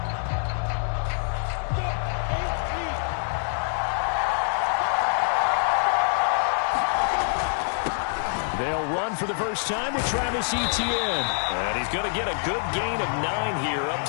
They'll run for the first time with Travis Etienne. And he's going to get a good gain of 9 here up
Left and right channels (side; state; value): right; silent; digital silence